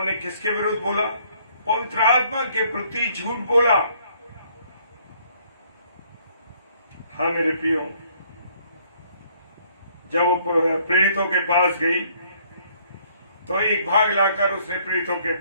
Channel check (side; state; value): both; inverted; correlation -0.63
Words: किसके विरुद्ध बोला? पवित्र आत्मा के प्रति झूठ बोला। हाँ मेरे प्रियो, जब वो प्रेरितों के पास गई तो एक भाग लाकर उसने प्रेरितों के